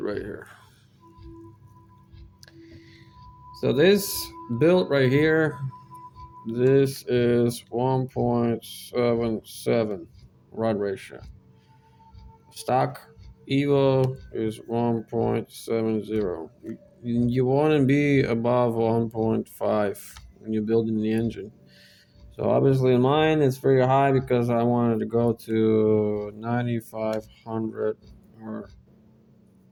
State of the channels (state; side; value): identical; both; correlation 1.00